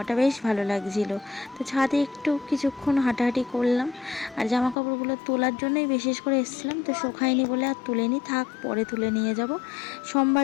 বেশ ভালো লাগছিল। তো ছাদে একটু কিছুক্ষণ হাঁটাহাঁটি করলাম, আর জামা কাপড়গুলো তোলার জন্যই বিশেষ করে এসেছিলাম, তো শোকায়নি বলে আর তুলেনি, থাক পরে তুলে নিয়ে যাব।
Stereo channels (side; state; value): right; drops out; at 4.8 s